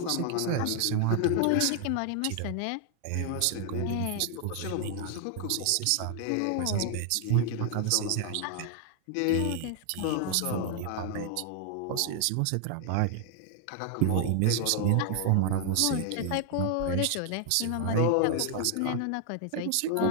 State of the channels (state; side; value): different; both; correlation 0.00